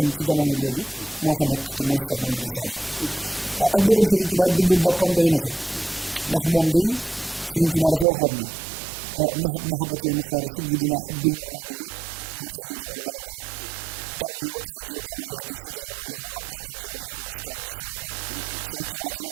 ci jamono jooju moo fa nekk te mooy Cheikh Mouhamadoul Fadal ak bëggam Serigne Touba it bindum boppam doy na ca ndax moom day Serigne Touba dafa waxoon ne mahat mahabati al muxtaar sayidina xubbil maganiya wal ahlina wal walada dammi wa ahli wa awliadi fidaun lahu abdan xadiman lahu muskaani li sanada Sëriñ Tuubaa dane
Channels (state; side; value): drops out; left; at 8.1 s